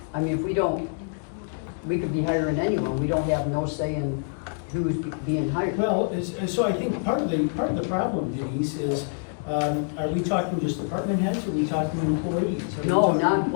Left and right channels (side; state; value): right; silent; digital silence